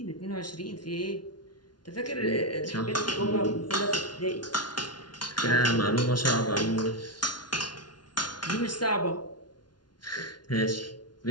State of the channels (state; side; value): late; right; 0.70 ms